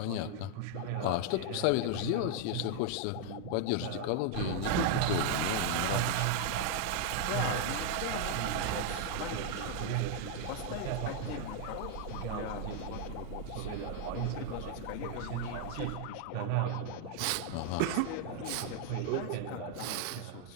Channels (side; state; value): both; different; correlation 0.00